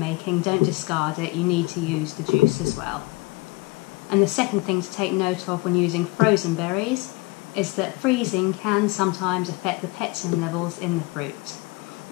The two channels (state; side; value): quieter; right; 23.3 dB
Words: Don't discard it, you need to use the juice as well. And the second thing to take note of when using frozen berries is that freezing can sometimes affect the pectin levels in the fruit.